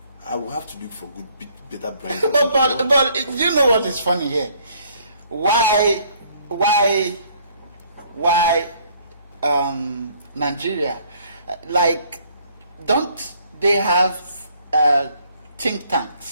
I will have to look for better brains. But you know what is funny here? Why Nigeria? Like, don't they have think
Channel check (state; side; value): inverted; both; correlation -0.63